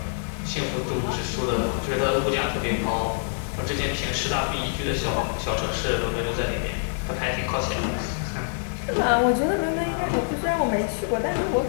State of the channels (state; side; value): silent; right; 61 dB below the other